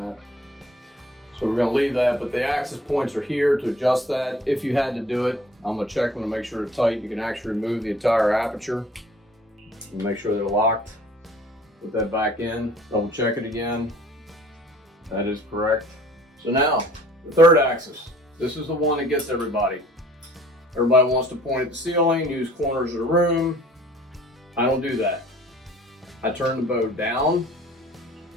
that. So we're going to leave that, but the axis points are here to adjust that. If you had to do it, I'm going to check them to make sure they're tight. You can actually remove the entire aperture and make sure they're locked. Put that back in, double check it again. That is correct. So now, the third axis. This is the one that gets everybody. Everybody wants to point at the ceiling, use corners of the room. I don't do that. I turn the bow down.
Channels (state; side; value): normal; both; correlation 0.52